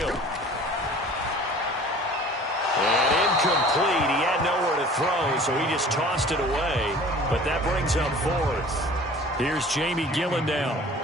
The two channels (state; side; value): normal; both; correlation 0.46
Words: And incomplete. He had nowhere to throw, so he just tossed it away. But that brings up fourth. Here's Jamie Gillen now.